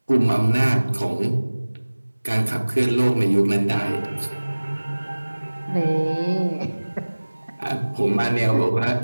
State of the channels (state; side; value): inverted; both; correlation -1.00